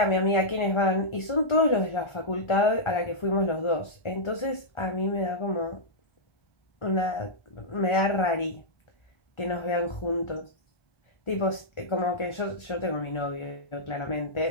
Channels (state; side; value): late; right; 1.4 ms